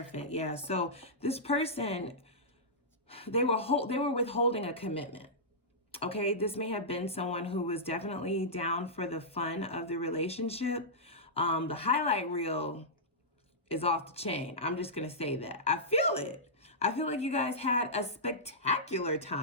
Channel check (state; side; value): normal; both; correlation -0.13